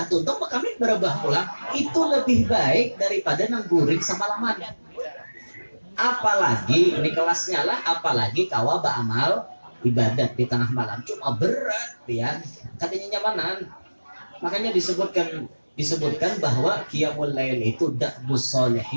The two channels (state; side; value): inverted; both; correlation -1.00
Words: tuntung bakal berubah pulang. Itu lebih baik daripada nang guring semalaman. Apalagi ini kelasnya lah, apalagi kawa beramal ibadat di tengah malam cuma berat pian, katanya nyamanan. Makanya disebutkan bahwa qiyamul lail itu da'bus